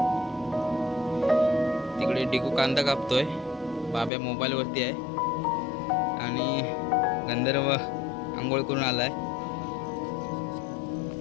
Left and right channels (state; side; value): drops out; right; at 4.1 s